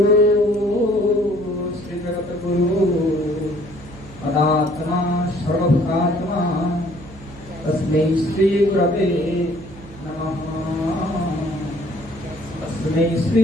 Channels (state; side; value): noise; right; hum, 18 dB below the sound